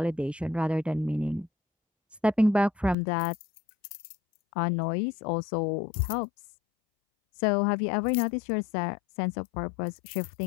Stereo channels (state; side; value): drops out; right; at 3.0 s